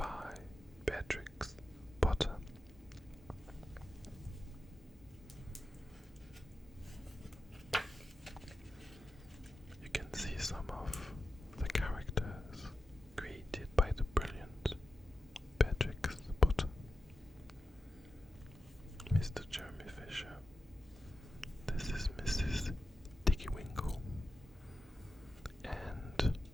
Beatrix Potter. You can see some of the characters created by the brilliant Beatrix Potter. Mr. Jeremy Fisher. This is Mrs. Dicky Winkle. And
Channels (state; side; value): normal; both; correlation 0.91